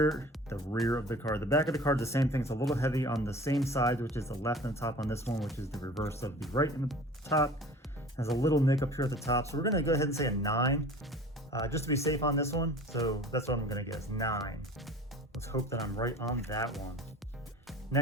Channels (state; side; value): normal; both; correlation 0.43